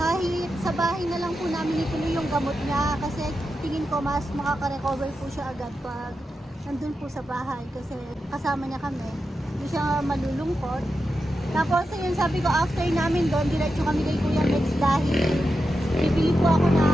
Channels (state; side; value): normal; both; correlation 0.89